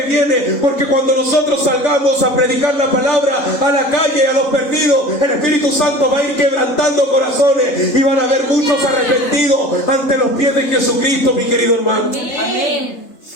viene. Porque cuando nosotros salgamos a predicar la palabra a la calle, a los perdidos, el Espíritu Santo va a ir quebrantando corazones y van a haber muchos arrepentidos ante los pies de Jesucristo, mi querido hermano. Amén.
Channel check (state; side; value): late; right; 3.7 ms